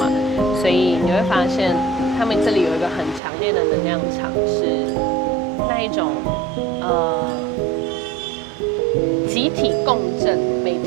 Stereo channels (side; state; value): left; drops out; at 3.2 s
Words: 所以你会发现他们这里有一个很强烈的能量场，是那一种集体共振，每